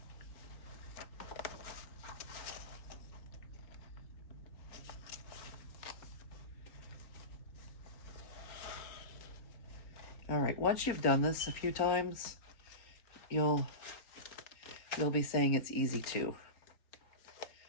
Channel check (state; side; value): late; right; 4.4 ms